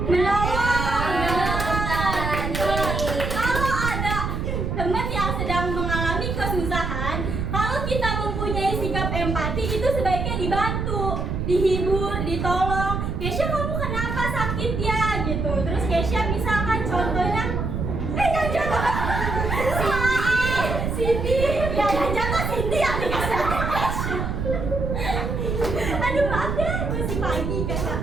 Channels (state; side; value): noise; right; rumble, 2 dB below the sound